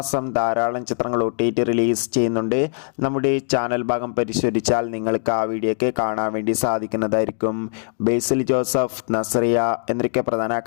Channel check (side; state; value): right; silent; digital silence